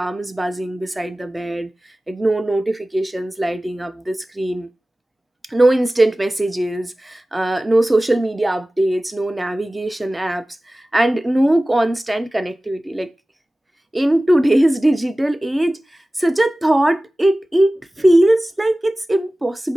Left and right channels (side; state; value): both; normal; correlation 0.97